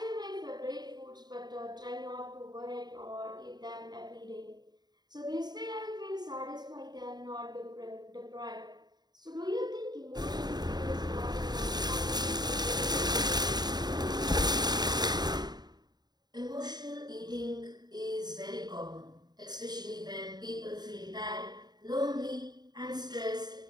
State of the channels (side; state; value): left; late; 0.20 ms